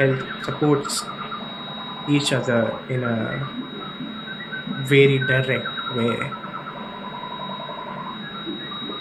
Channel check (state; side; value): identical; both; correlation 1.00